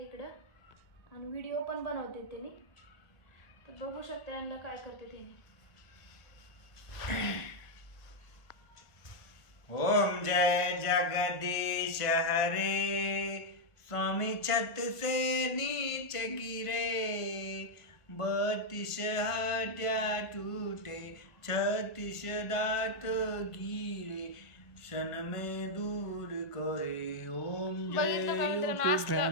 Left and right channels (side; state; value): right; late; 1.5 ms